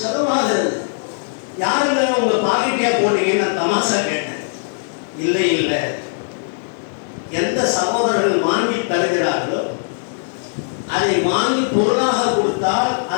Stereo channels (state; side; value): silent; right; 66 dB below the other